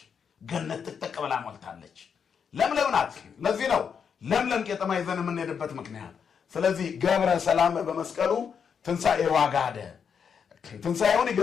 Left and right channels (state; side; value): quieter; right; 6.9 dB